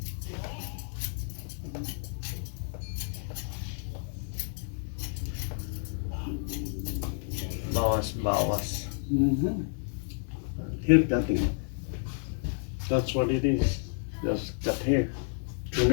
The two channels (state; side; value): silent; right; digital silence